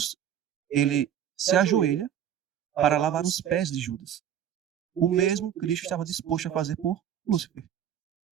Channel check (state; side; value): quieter; left; 9.7 dB